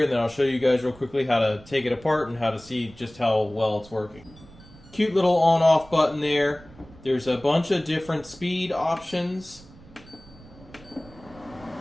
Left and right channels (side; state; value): right; noise; rumble, 22 dB below the sound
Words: and then I'll show you guys real quickly how to take it apart and how to see just how well it's working. Cute little on-off button there. There's a bunch of different speed options.